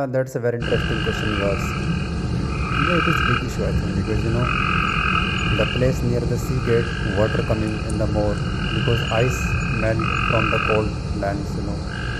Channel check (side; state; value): both; identical; correlation 1.00